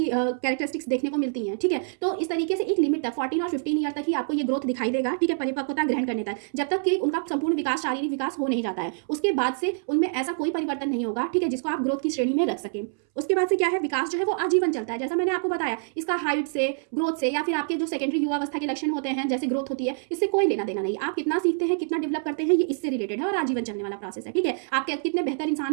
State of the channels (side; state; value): left; silent; 61 dB below the other